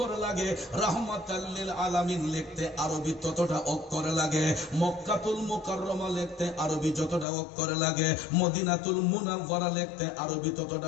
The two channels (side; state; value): right; drops out; at 7.2 s